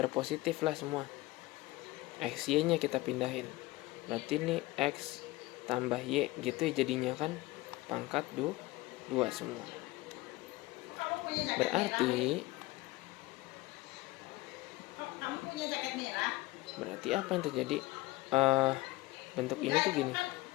positif lah semua. X y nya kita pindahin, berarti ini x tambah y gitu ya jadinya kan, pangkat 2 semua. Berarti Kamu punya jaket merah? berarti apa yang terjadi, bentuk ini tuh gini,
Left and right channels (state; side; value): quieter; right; 19.9 dB